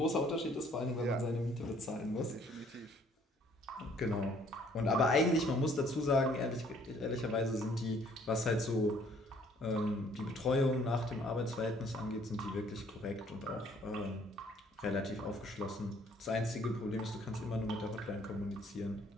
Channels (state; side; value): normal; both; correlation 0.61